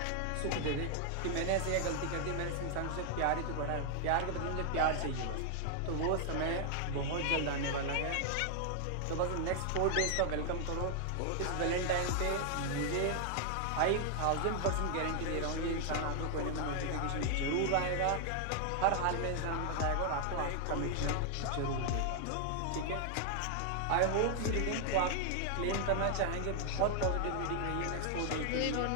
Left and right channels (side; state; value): both; different; correlation 0.00